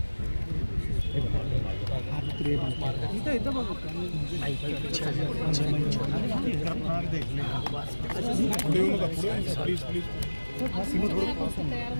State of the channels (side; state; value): both; inverted; correlation -1.00